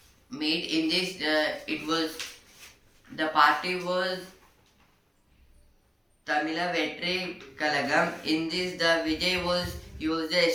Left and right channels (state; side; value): identical; both; correlation 1.00